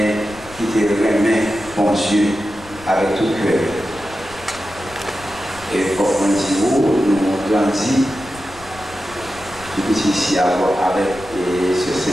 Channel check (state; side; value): noise; left; rumble, 20 dB below the sound